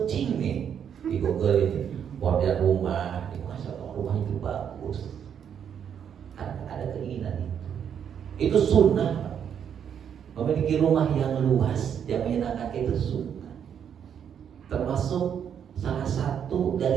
nih di Google ini model rumah, masa rumah itu bagus. Ada keinginan itu sunnah. Memiliki rumah yang luas yang menyenangkan itu sunnah. Termasuk salah satu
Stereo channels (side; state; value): left; quieter; 8.3 dB